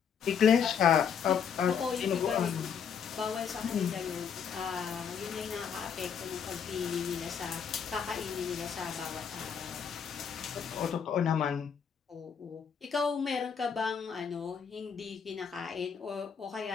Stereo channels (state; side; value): quieter; right; 7.2 dB